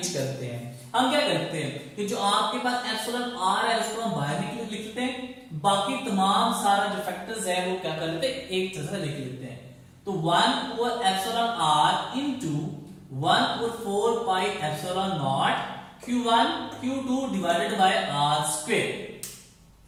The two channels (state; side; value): identical; both; correlation 1.00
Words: करते हैं। हम क्या करते हैं कि जो आपके पास एप्सिलॉन आर है उसको हम बाहर लिख लेते हैं, बाकी तमाम सारा जो फैक्टर्स है वो क्या करते हैं, एक जगह लिख लेते हैं। तो 1 epsilon r into 1/4 pi epsilon naught Q1 Q2 divided by R square.